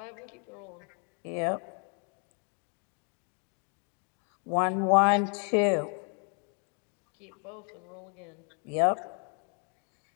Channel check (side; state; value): right; quieter; 39.5 dB